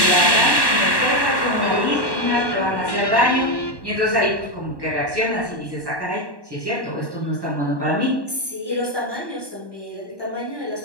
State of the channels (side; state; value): left; late; 1.1 ms